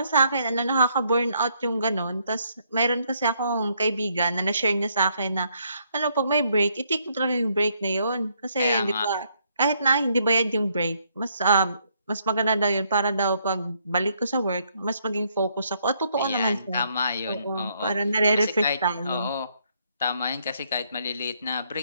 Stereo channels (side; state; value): both; inverted; correlation -0.71